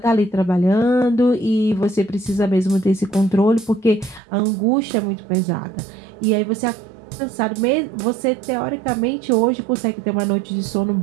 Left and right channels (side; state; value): left; drops out; at 4.2 s